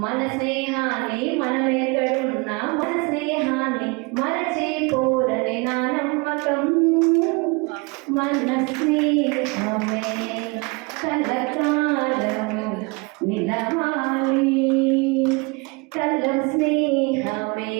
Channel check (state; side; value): quieter; left; 28.6 dB